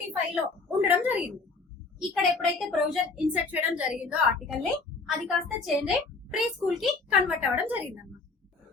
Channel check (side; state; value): right; quieter; 4.0 dB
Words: లో ఉండడం జరిగింది. ఇక్కడ ఎప్పుడైతే ప్రొవిజన్ ఇన్సర్ట్ చేయడం జరిగిందో ఆర్టికల్ ని, అది కాస్త చేంజ్ అయ్యి ప్రీ స్కూల్ కి కన్వర్ట్ అవ్వడం జరిగింది అన్నమాట.